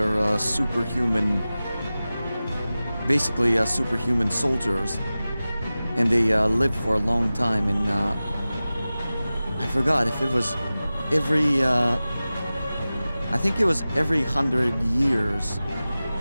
superhuman, basically superhuman soldiers, and they live for a long time. And I forgot if it was every, I think it was every 100 years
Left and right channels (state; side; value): inverted; both; correlation -0.96